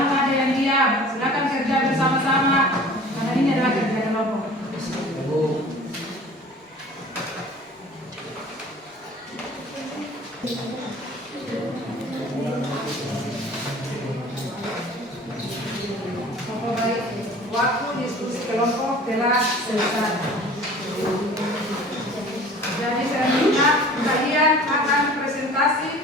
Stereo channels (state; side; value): normal; both; correlation 0.45